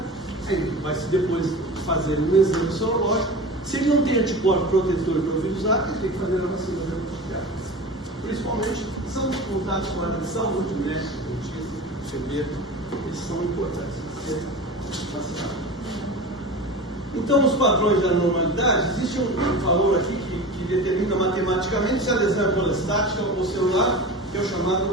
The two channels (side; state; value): both; normal; correlation 0.32